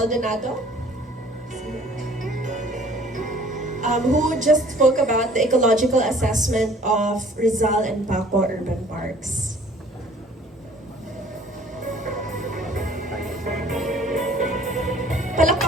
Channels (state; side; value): normal; both; correlation 0.54